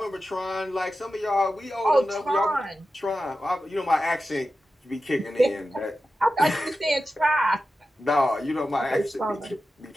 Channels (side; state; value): both; normal; correlation 0.92